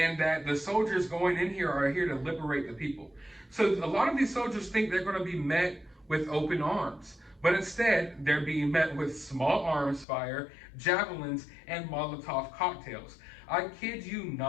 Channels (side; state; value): right; drops out; at 10.1 s